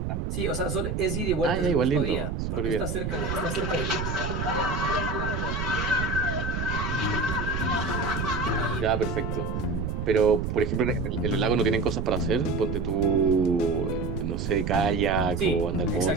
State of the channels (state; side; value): noise; right; rumble, 3 dB below the sound